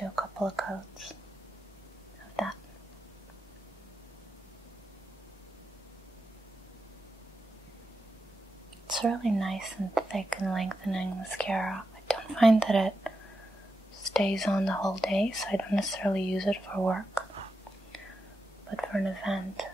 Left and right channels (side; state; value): both; normal; correlation 0.88